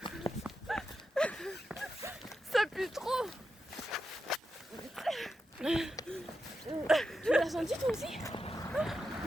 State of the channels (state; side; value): normal; both; correlation 0.88